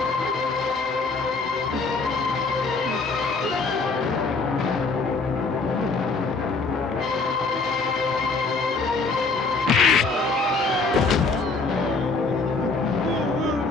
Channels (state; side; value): quieter; right; 3.9 dB